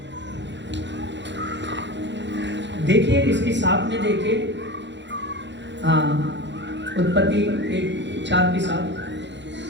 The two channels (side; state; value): left; late; 0.52 ms